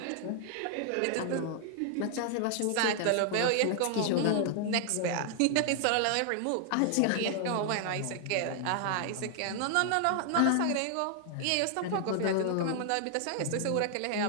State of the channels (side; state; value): both; different; correlation 0.00